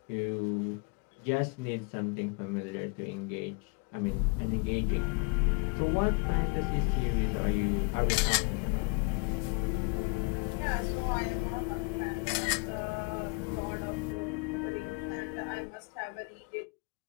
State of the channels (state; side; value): quieter; right; 30.4 dB